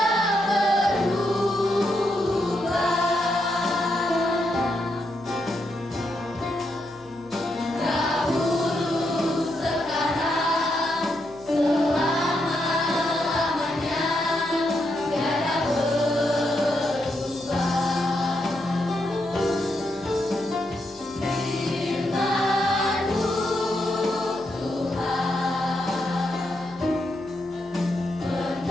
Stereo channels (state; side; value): noise; left; hum, 26 dB below the sound